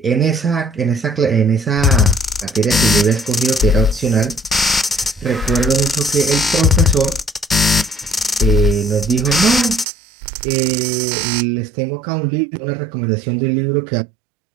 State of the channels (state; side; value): drops out; left; at 9.9 s